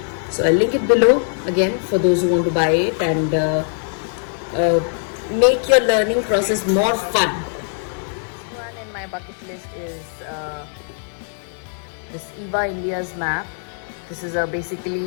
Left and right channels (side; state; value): right; silent; digital silence